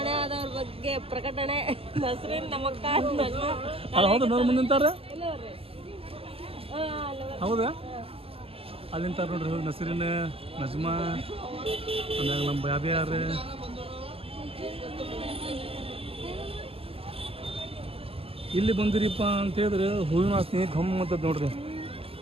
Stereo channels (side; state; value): left; late; 0.28 ms